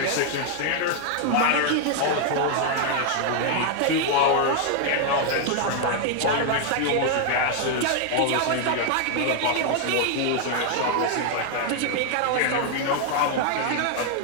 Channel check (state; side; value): different; both; correlation 0.00